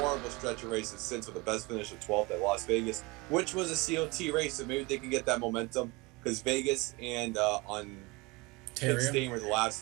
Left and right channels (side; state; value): left; quieter; 24.5 dB